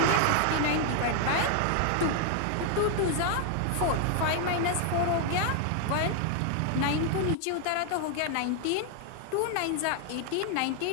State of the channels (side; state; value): both; different; correlation 0.00